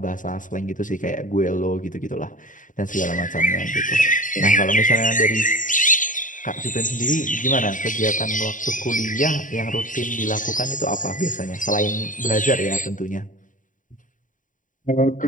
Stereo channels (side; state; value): right; late; 0.38 ms